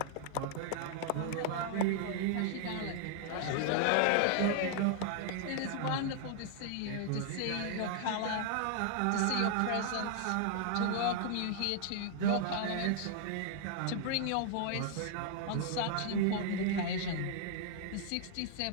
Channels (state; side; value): different; both; correlation 0.00